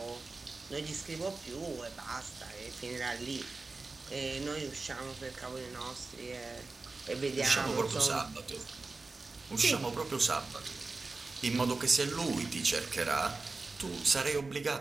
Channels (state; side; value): quieter; left; 3.7 dB